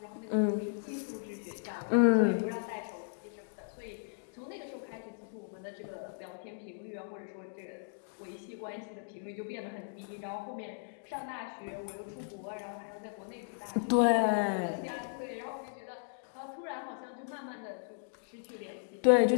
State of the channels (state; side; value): silent; right; digital silence